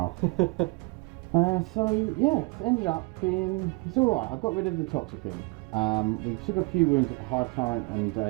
So yeah, it's ended up being it's all right. I got rid of the Toxicrim. We took a few wounds of a Hive Tyrant and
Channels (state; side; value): quieter; left; 27.1 dB